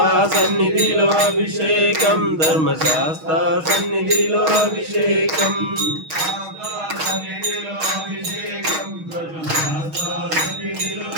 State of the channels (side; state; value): left; late; 6.3 ms